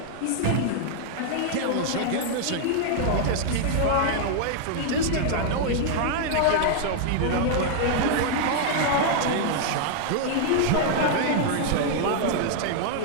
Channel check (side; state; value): both; different; correlation -0.01